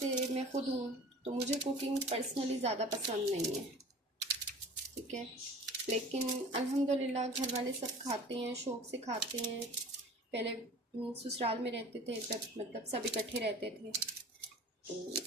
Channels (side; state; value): both; normal; correlation 0.43